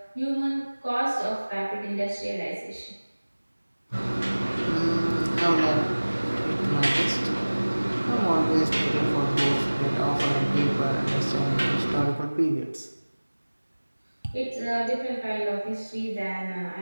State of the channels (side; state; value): both; inverted; correlation -1.00